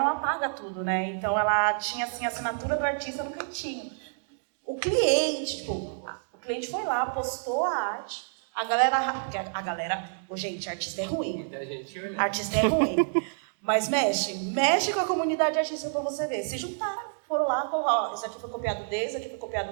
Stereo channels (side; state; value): left; silent; digital silence